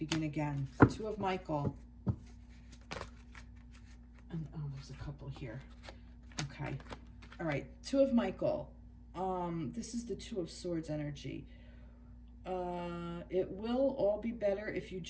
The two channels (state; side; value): identical; both; correlation 1.00